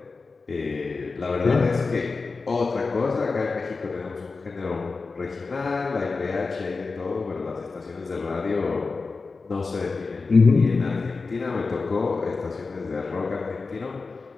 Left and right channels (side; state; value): right; quieter; 4.2 dB